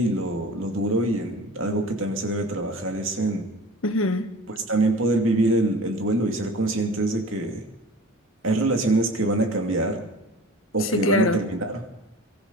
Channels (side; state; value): both; normal; correlation 0.41